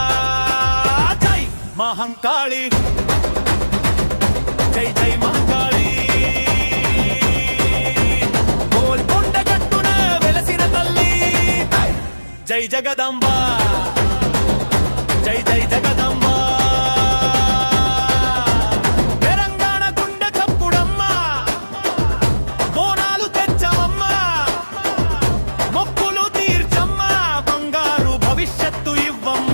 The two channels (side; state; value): both; inverted; correlation -1.00